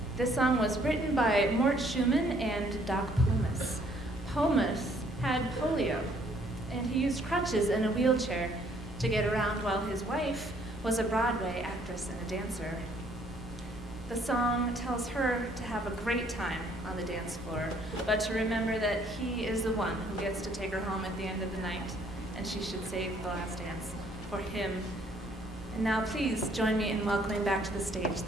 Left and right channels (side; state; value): both; normal; correlation 0.64